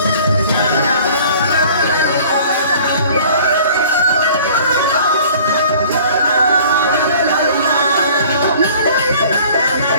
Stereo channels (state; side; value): inverted; both; correlation -0.50